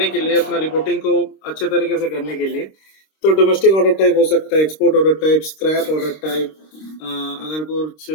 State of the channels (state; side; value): late; right; 26 ms